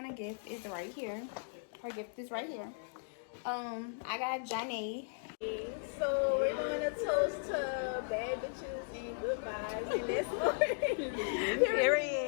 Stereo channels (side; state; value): right; silent; digital silence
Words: gift is right here. Her gift is right here. I got Johnny. So we're doing a toast to bad bitches and good vibes, and let's go.